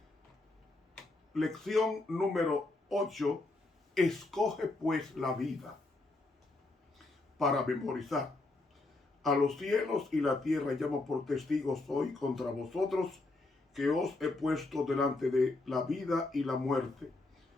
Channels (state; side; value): quieter; right; 3.1 dB